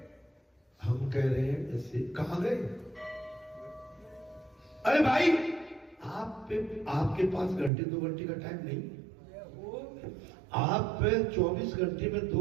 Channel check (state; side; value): drops out; left; at 7.7 s